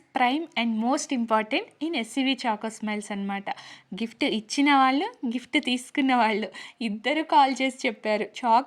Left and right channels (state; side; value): identical; both; correlation 1.00